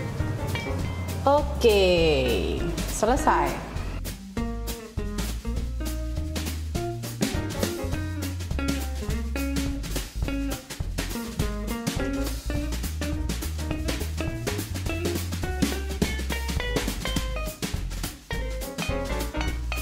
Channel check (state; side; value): identical; both; correlation 1.00